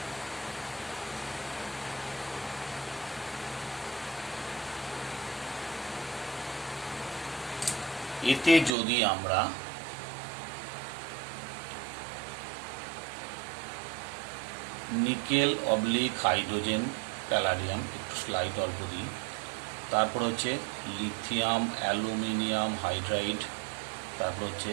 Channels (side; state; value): left; drops out; at 8.7 s